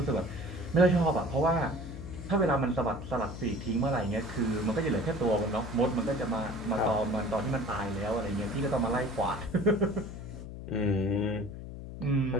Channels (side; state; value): left; noise; hum, 10 dB below the sound